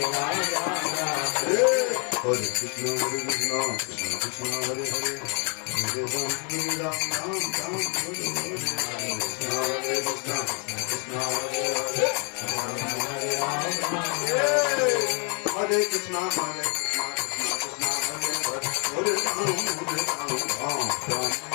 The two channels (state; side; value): quieter; right; 38.0 dB